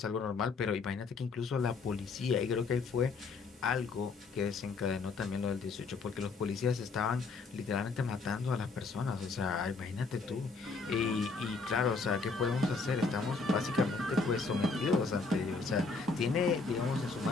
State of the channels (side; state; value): right; quieter; 4.3 dB